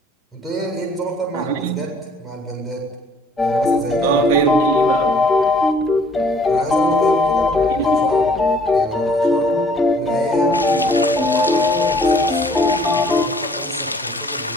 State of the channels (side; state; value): both; normal; correlation 0.58